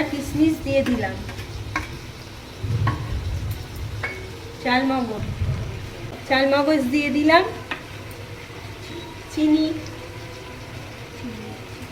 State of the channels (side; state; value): both; identical; correlation 1.00